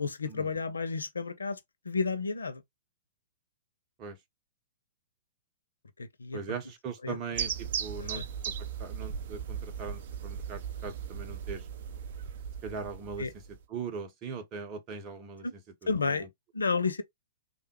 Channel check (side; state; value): both; inverted; correlation -0.55